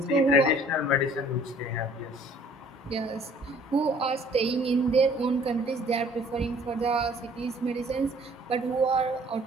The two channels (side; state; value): both; normal; correlation 0.56